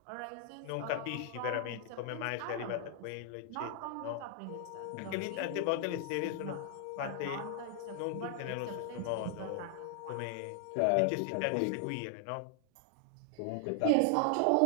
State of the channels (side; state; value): both; different; correlation 0.00